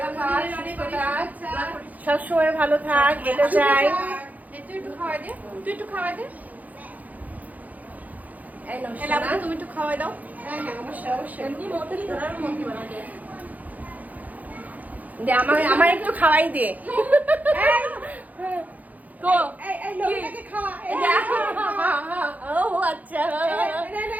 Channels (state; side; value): late; left; 0.079 ms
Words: থাক, সুস্থ থাক, সবসময় ভালো থাক, এটা চাই। একটু খাওয়াই দে, তুই একটু খাওয়াই দে। এই নাও এলা সোনা। তুমি একটু খাওয়াই দাও। হ্যাঁ হ্যাঁ, অবশ্যই অবশ্যই। এমনি মতই ধরার মতই বানাতে। দে আমার একটু খাওয়াই দে। তো এই এই লোকটাকে খাওয়া। এই ও আচ্ছা, হ্যাঁ।